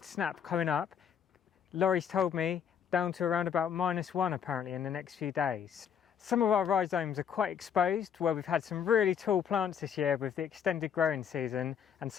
snap coming up. Laurie's told me down to around about -1 apparently in the next few days. Some of our rhizomes are quite exposed, where we've had some really tall plants this year with the extended growing season, and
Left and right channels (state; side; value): quieter; right; 8.0 dB